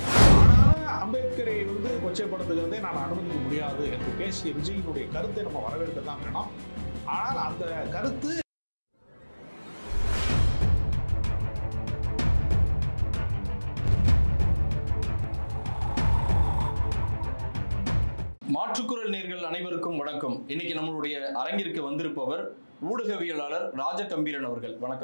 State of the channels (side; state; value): both; inverted; correlation -1.00